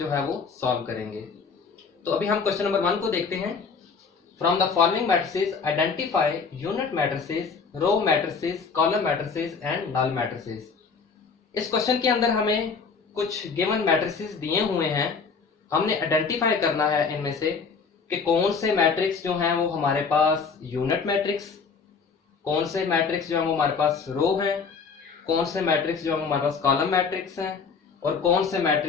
है वो सॉल्व करेंगे। तो अभी हम क्वेश्चन नंबर 1 को देखते हैं। From the following matrices identify unit matrices, row matrices, column matrices and null matrices. इस क्वेश्चन के अंदर हमें कुछ गिवन मैट्रिसेस दिए हुए हैं, हमने आइडेंटिफाई करना है इनमें से कि कौन से मैट्रिक्स जो हैं वो हमारे पास यूनिट मैट्रिक्स, कौन से मैट्रिक्स जो है वो हमारे पास रो हैं, कौन से मैट्रिक्स जो है वो हमारे पास कॉलम मैट्रिक्स हैं और कौन से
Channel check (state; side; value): quieter; right; 5.3 dB